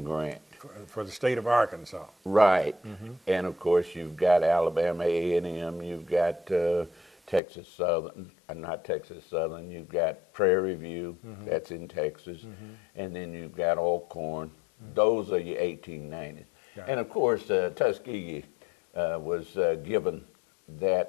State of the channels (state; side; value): drops out; right; at 7.4 s